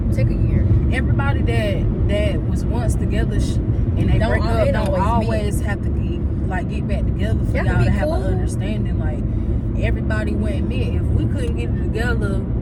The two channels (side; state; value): both; identical; correlation 1.00